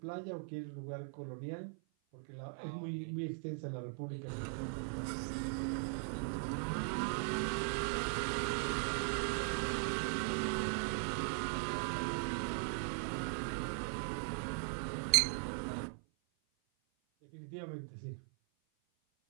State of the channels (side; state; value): left; silent; 51 dB below the other